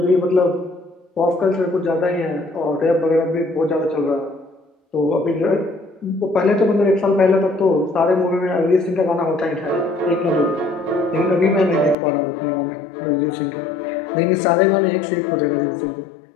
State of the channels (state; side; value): drops out; right; at 12.0 s